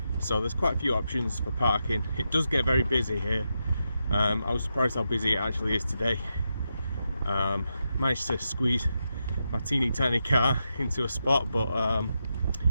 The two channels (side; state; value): both; inverted; correlation -0.86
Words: So there's quite a few options for parking. It does get very busy here. I was surprised how busy it actually is today. Managed to squeeze my teeny tiny car into a spot, but